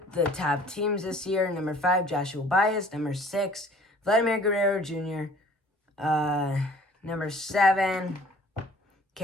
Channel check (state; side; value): normal; both; correlation 0.52